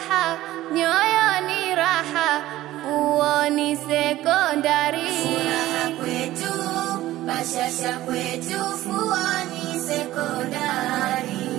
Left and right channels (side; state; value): left; quieter; 15.4 dB